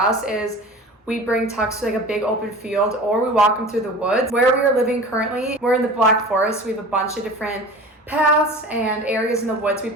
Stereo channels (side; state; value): both; normal; correlation 0.37